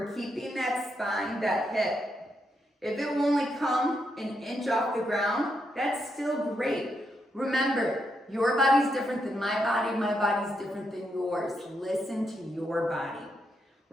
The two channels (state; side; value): normal; both; correlation 0.81